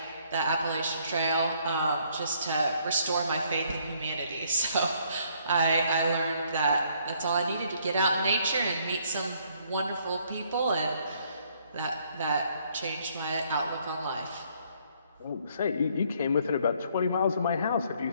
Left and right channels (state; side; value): inverted; both; correlation -0.66